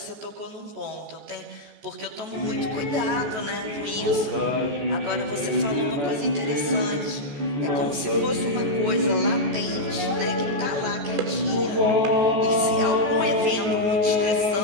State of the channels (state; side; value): late; left; 14 ms